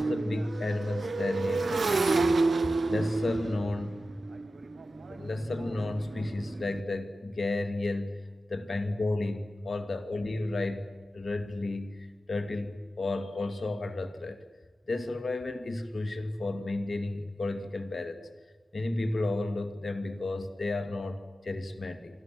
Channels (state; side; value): normal; both; correlation 0.93